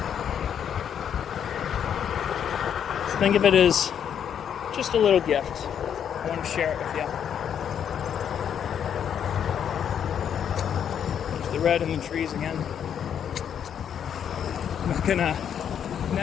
So think of it as just a little gift. I want to share it with you. There's the red in the trees again. I'm not gonna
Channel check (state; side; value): quieter; right; 8.6 dB